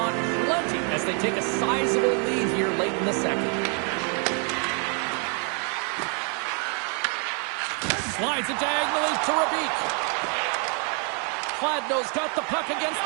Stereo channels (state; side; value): quieter; left; 39.3 dB